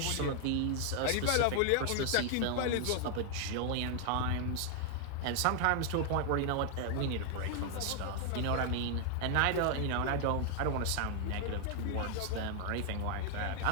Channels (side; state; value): both; different; correlation 0.00